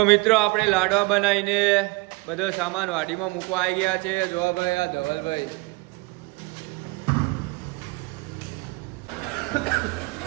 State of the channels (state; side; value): quieter; left; 25.3 dB